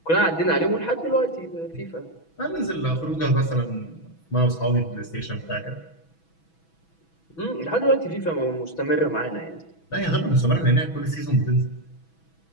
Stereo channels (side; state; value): right; late; 6.1 ms